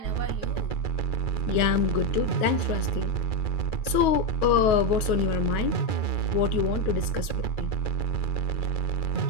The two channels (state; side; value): late; right; 9.4 ms